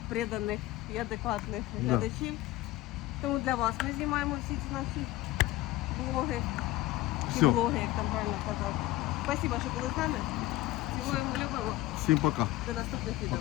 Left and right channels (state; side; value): quieter; right; 17.1 dB